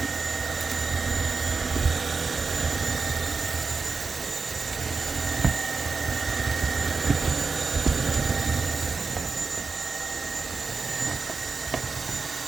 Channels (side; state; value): left; quieter; 4.6 dB